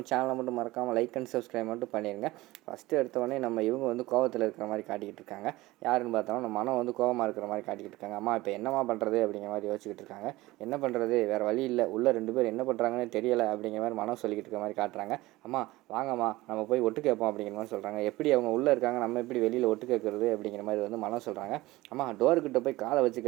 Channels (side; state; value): left; quieter; 19.0 dB